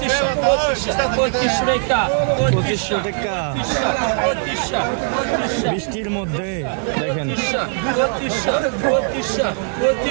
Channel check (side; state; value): left; silent; 58 dB below the other